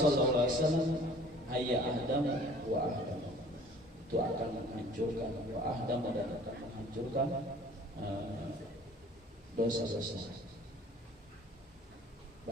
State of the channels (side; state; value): both; normal; correlation 0.50